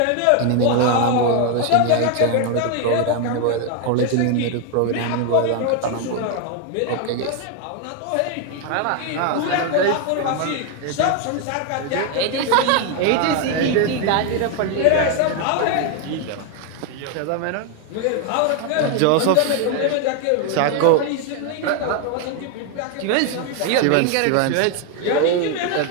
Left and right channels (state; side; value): different; both; correlation 0.01